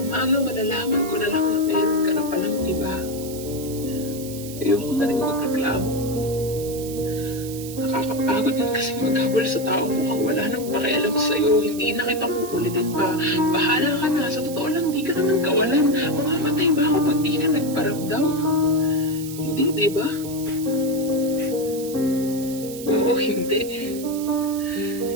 umaga malalaman ko na lang na meron ka na palang iba. Ayoko na rin magreklamo. Nakakapagod din kasi maghabol sa taong mukhang wala nang pakialam sa'yo. Hindi na kita kukulitin pa. Bahala ka na. Sa totoo lang, di ka naman kawalan. Mamamatay ba ako pag di ka nagparamdam? Hindi, di ba? Oo, hindi.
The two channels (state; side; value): noise; right; hiss, 13 dB below the sound